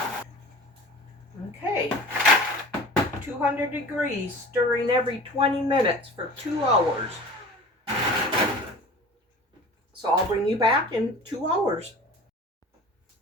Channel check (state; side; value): normal; both; correlation 0.40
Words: Okay, 200 degrees, stirring every 20 minutes for 2 hours. So I'll bring you back in 2 hours.